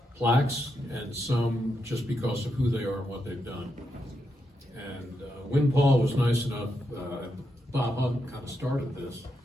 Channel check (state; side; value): normal; both; correlation 0.83